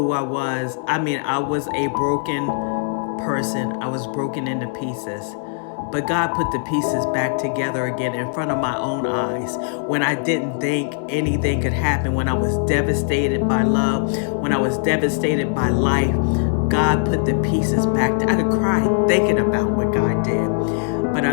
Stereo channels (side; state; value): right; silent; digital silence